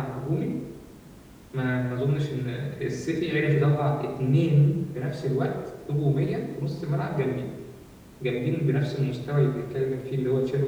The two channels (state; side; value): identical; both; correlation 1.00